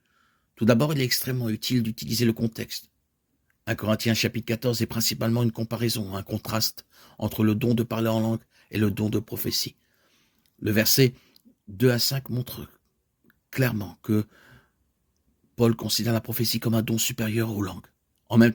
Tout d'abord, il est extrêmement utile d'utiliser le contexte. 1 Corinthiens chapitre 14 est principalement une comparaison, un contraste entre le don de parler en langue et le don de prophétie. Le verset 2 à 5 montre clairement que Paul considère la prophétie comme un don supérieur aux langues. En même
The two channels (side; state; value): both; identical; correlation 1.00